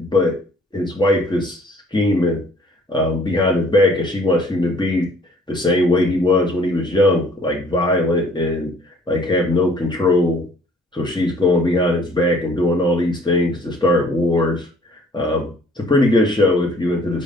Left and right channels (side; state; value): both; normal; correlation 0.57